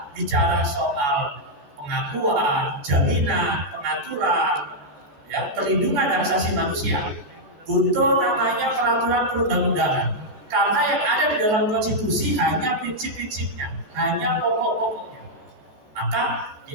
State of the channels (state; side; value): late; left; 14 ms